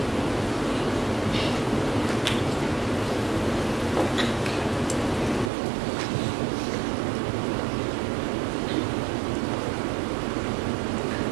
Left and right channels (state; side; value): drops out; left; at 5.5 s